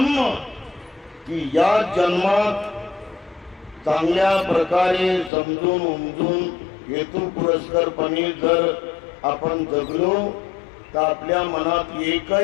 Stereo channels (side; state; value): right; drops out; at 5.3 s